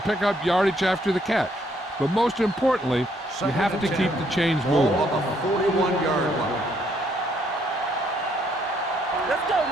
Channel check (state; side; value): normal; both; correlation 0.70